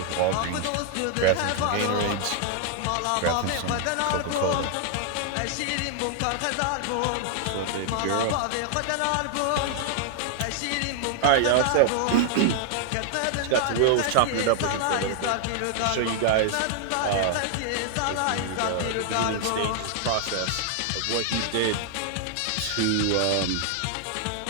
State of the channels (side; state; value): both; different; correlation 0.00